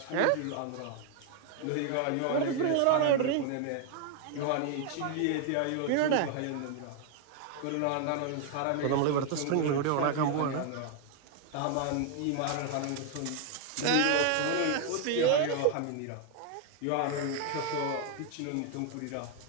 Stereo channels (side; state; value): both; different; correlation 0.00